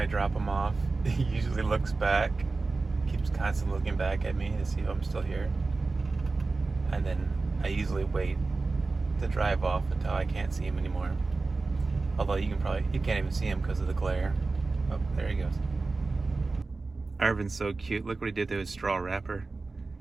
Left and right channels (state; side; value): quieter; left; 3.7 dB